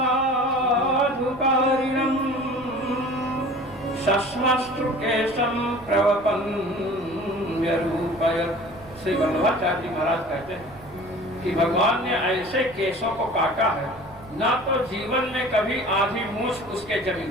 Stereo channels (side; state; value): right; noise; rumble, 22 dB below the sound